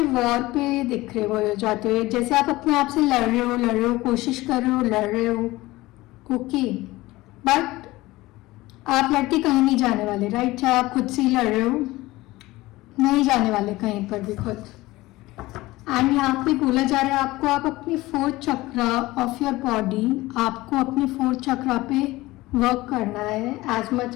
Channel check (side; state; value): right; quieter; 19.1 dB